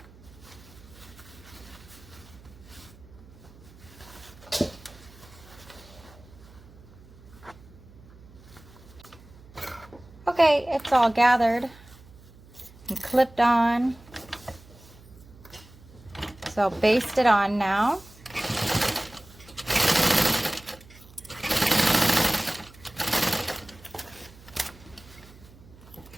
Okay, it's all gathered and clipped on. So I'll baste it on now.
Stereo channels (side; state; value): right; noise; hum, 22 dB below the sound